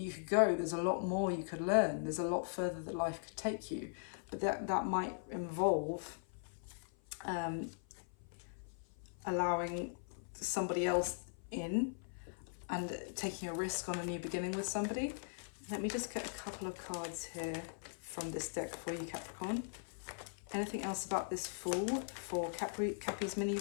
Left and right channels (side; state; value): right; silent; 51 dB below the other